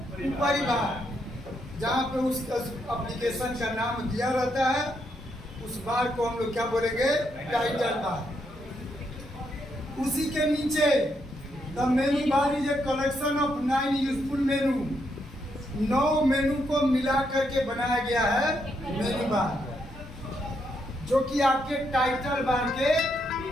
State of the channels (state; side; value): normal; both; correlation 0.78